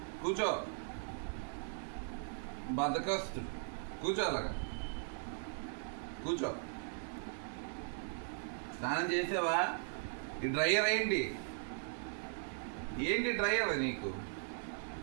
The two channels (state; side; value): silent; left; 52 dB below the other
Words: కూర్చో. బద్దకొస్తుంది, కూర్చో, అలాగా కూర్చో. స్నానం చేసావా? ఈ డ్రైయర్ ఏంటి ఏంటి డ్రైయర్ నీకు?